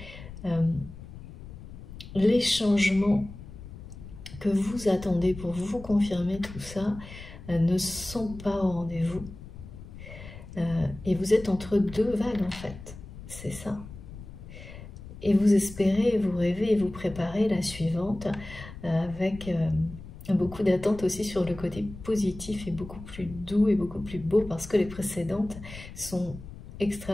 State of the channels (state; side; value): noise; left; rumble, 14 dB below the sound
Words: les changements que vous attendez pour vous confirmer tout ça ne sont pas au rendez-vous. Et vous êtes entre deux vagues en fait, c'est ça. Et vous espérez, vous rêvez et vous préparez la suivante avec beaucoup d'attentes aussi sur le côté positif et beaucoup plus doux et beaucoup plus beau parce que les précédentes sont